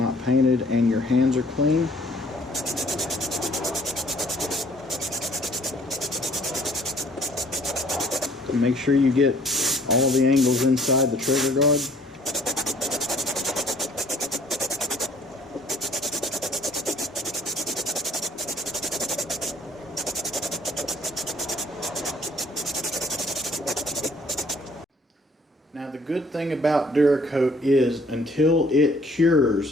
painted and your hands are clean. Make sure you get all the angles inside the trigger guard. Now the good thing about Duracoat is until it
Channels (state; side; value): normal; both; correlation 0.58